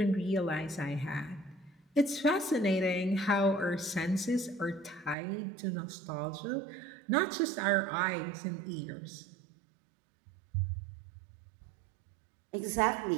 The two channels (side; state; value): left; drops out; at 5.2 s